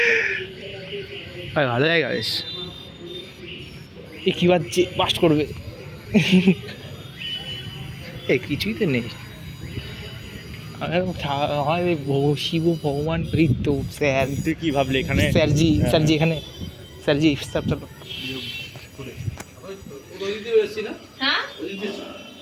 ভালো জায়গা বেশ। এ কি বাজছে, বাস্ট করবে। এ কিছুই তো নেই। শিব ভগবান এই তো স্যার। তুই কি ভাবলি এখানে? স্যারজি স্যারজি এখানে স্যারজি স্যার চলো। হ্যাঁ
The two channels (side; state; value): both; identical; correlation 1.00